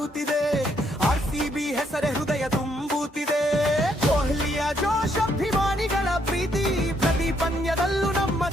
RCB ಹೆಸರೇ ಹೃದಯ ತುಂಬುತ್ತಿದೆ ಕೊಹ್ಲಿಯ ಜೋಶ್ ಅಭಿಮಾನಿಗಳ ಪ್ರೀತಿ ಪ್ರತಿ ಪಂದ್ಯದಲ್ಲೂ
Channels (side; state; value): both; normal; correlation 0.72